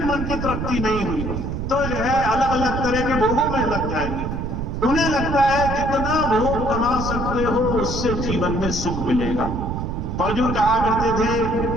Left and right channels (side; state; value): right; noise; rumble, 4 dB below the sound